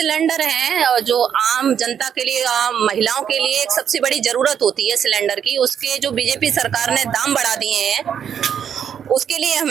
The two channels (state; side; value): quieter; left; 8.4 dB